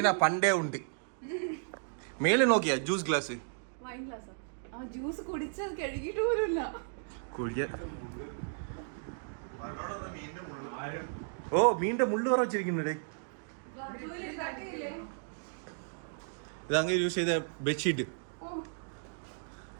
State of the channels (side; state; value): left; silent; digital silence